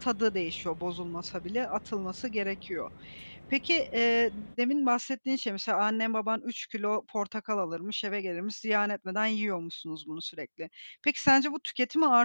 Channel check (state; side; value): inverted; both; correlation -1.00